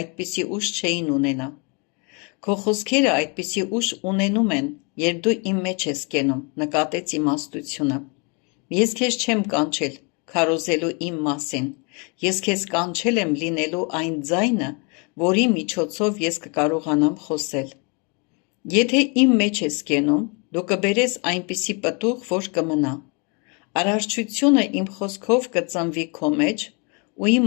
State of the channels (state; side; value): quieter; right; 33.6 dB